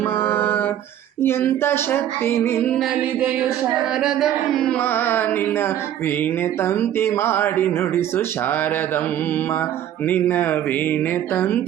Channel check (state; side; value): quieter; left; 11.1 dB